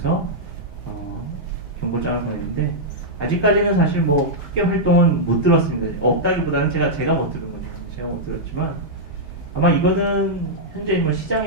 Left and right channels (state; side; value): normal; both; correlation -0.07